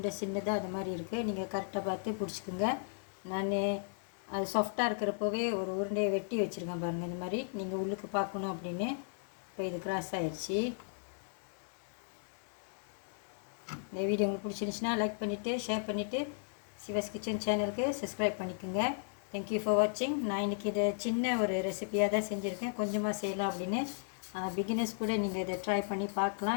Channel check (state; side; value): silent; right; digital silence